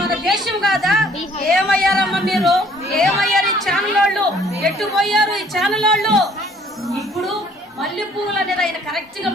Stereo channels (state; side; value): normal; both; correlation 0.59